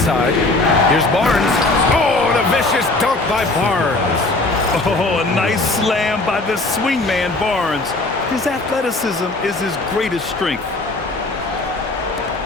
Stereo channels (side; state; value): right; quieter; 3.0 dB